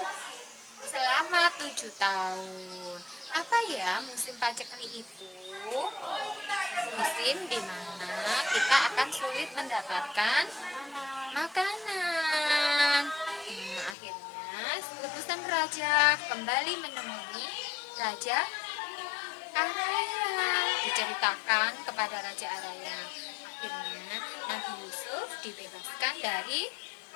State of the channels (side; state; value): right; drops out; at 14.0 s